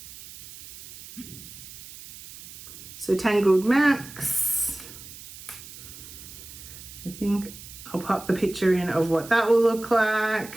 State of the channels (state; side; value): noise; right; hiss, 16 dB below the sound